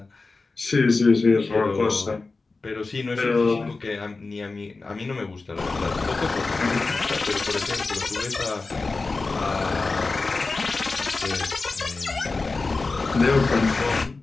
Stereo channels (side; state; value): right; quieter; 3.8 dB